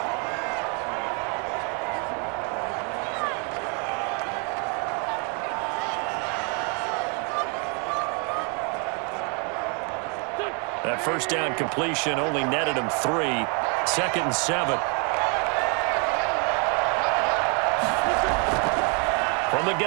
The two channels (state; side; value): quieter; left; 36.6 dB